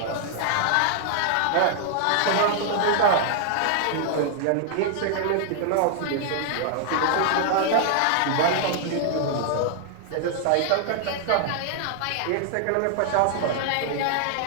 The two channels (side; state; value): both; different; correlation 0.00